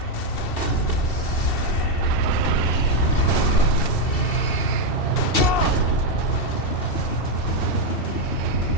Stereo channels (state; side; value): late; right; 2.7 ms